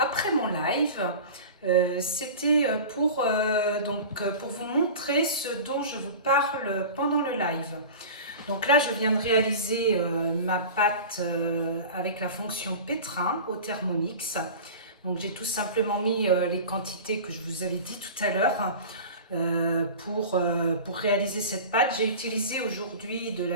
mon live. C'était pour vous montrer ce dont je vous parle pendant le live. Donc là, je viens de réaliser ma pâte avec la fonction pétrin au Thermomix. Donc j'ai tout simplement mis les quantités que je vous avais dit tout à l'heure. Pour réaliser cette pâte, j'ai utilisé aujourd'hui de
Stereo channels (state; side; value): inverted; both; correlation -0.35